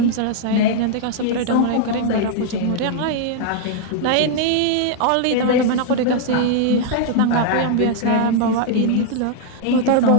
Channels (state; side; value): different; both; correlation -0.01